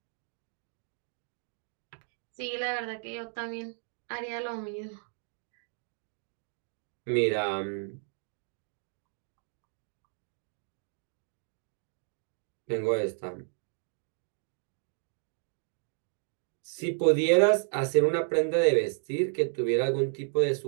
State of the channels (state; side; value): silent; left; 56 dB below the other